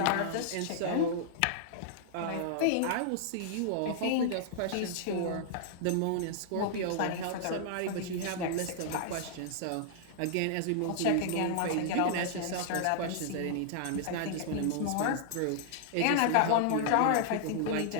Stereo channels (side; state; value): both; different; correlation -0.01